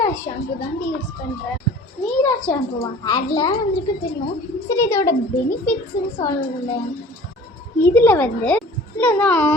ஷாம்பு தான் யூஸ் பண்ணுறேன். மீரா ஷாம்புவா ஹேர்லாம் வந்துருக்கு தெரியும். சரி, இதோட பெனிஃபிட்ஸ்ன்னு சொல்லலை. இதில் வந்து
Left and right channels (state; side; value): normal; both; correlation 0.45